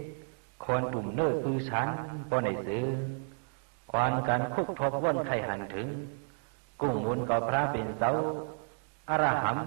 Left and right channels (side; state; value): left; silent; 57 dB below the other